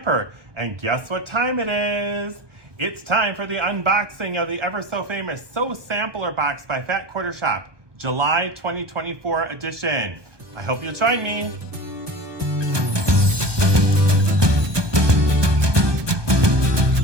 And guess what time it is? It's time for the unboxing of the ever so famous Sew Sampler box by Fat Quarter Shop, July 2024 edition. I hope you'll join me.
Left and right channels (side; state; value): left; late; 1.2 ms